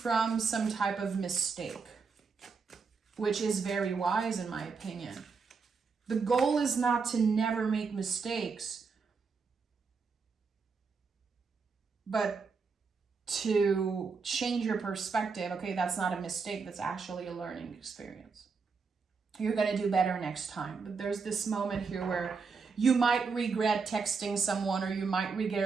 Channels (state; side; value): quieter; left; 5.0 dB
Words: some type of mistake, which is very wise in my opinion. The goal is not to never make mistakes, but to change your perspective. Okay, that's not a mistake. That's actually a learning experience. You're going to do better next time. But there's this moment here where you might regret texting someone, or you might